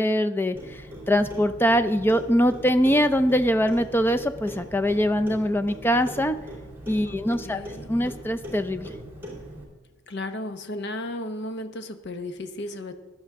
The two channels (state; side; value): normal; both; correlation 0.80